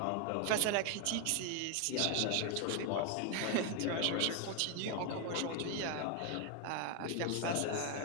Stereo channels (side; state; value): both; different; correlation 0.01